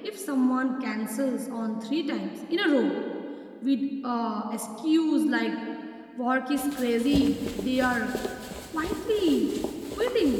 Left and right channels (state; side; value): identical; both; correlation 1.00